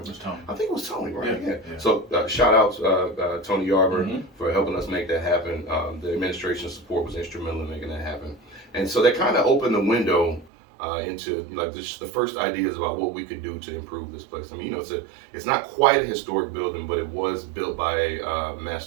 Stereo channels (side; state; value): left; drops out; at 10.5 s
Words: was Tony. I think it was Tony, right? Yeah. So shout out Tony Yarber for helping us make that happen. The administration support was instrumental in making that happen. And so that kind of opened the window into like just the first ideas about what we could do to improve this place. I mean, it's not quite a historic building, but it was built by a